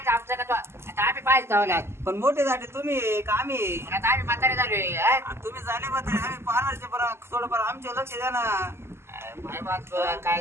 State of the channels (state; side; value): late; left; 0.12 ms